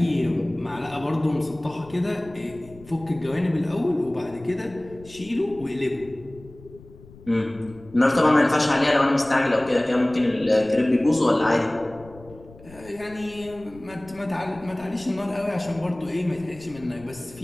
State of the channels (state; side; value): noise; left; rumble, 21 dB below the sound